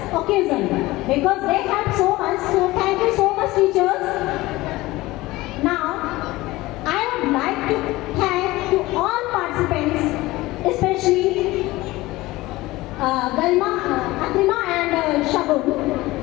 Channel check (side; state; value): right; quieter; 19.1 dB